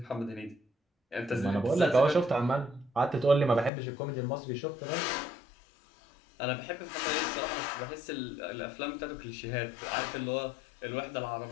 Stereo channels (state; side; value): drops out; right; at 3.7 s